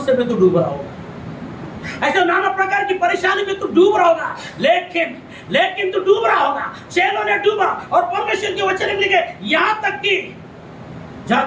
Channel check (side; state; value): both; identical; correlation 1.00